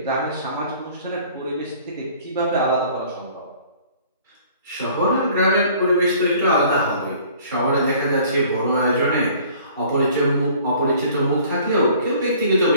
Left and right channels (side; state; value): both; inverted; correlation -0.53